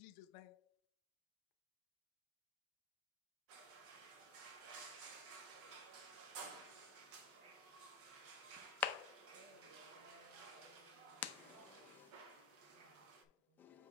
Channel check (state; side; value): quieter; right; 3.8 dB